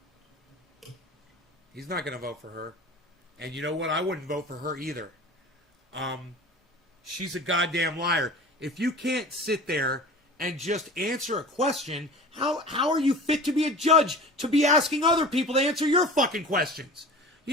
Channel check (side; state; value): both; normal; correlation 0.38